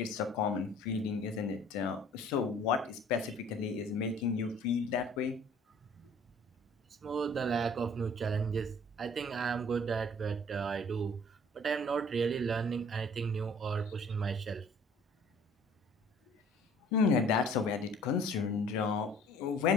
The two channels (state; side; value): normal; both; correlation 0.53